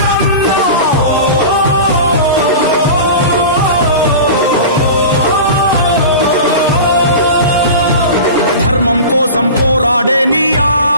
ధర్మం కోసం పోరాడే నీ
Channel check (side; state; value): both; inverted; correlation -0.32